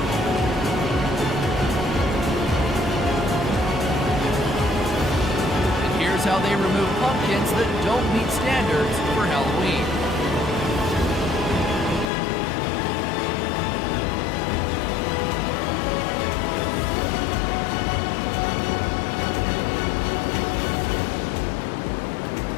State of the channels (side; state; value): right; drops out; at 12.1 s